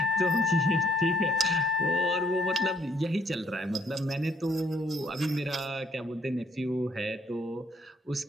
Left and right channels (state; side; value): normal; both; correlation 0.65